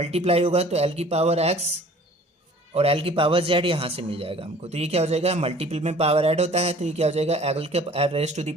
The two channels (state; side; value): normal; both; correlation 0.50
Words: होगा तो एल की पावर एक्स और एल की पावर जेड यहाँ से मिल जाएगा हमको, तो ये क्या हो जाएगा, मल्टीपल में पावर ऐड होता है तो ये क्या हो जाएगा, एल के raise to the